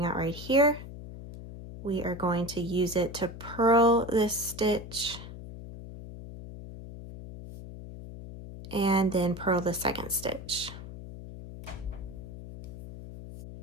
out right here, we are going to use it to purl this stitch and then purl the second stitch.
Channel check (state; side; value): noise; left; hum, 12 dB below the sound